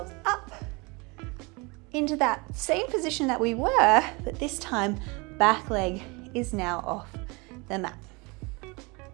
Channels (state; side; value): quieter; left; 27.4 dB